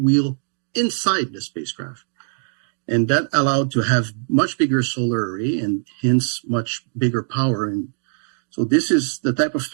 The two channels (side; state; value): left; silent; digital silence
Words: inside the spacecraft. And that allowed to have much bigger solar array and hence much bigger power. And so this is the type of